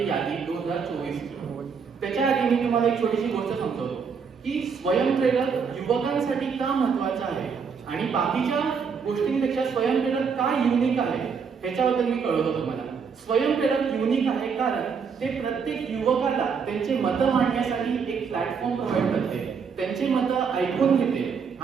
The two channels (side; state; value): left; quieter; 6.0 dB